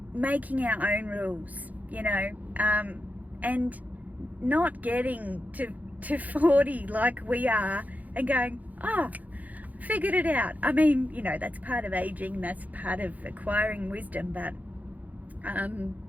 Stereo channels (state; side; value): late; left; 0.078 ms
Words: making our own rules, you know, and not getting to 40 like we are and going, oh, figured it out. I mean, you know, that's part of aging, that's part of acquiring wisdom, but